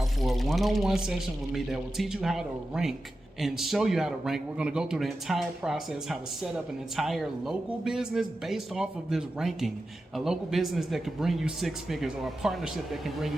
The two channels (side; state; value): both; normal; correlation 0.92